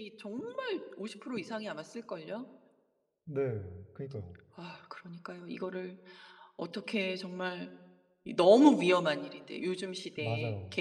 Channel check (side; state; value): both; identical; correlation 1.00